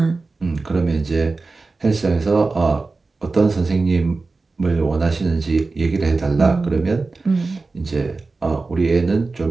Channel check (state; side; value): quieter; left; 3.8 dB